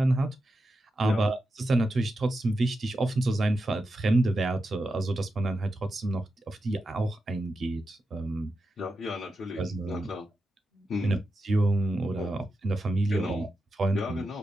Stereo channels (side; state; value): both; normal; correlation 0.89